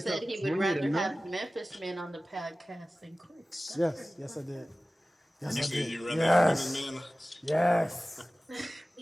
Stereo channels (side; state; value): both; normal; correlation 0.97